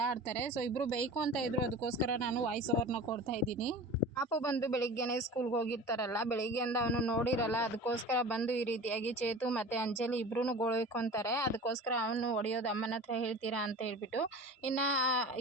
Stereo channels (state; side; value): normal; both; correlation 0.36